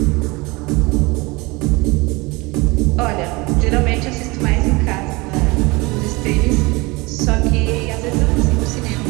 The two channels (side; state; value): left; quieter; 24.5 dB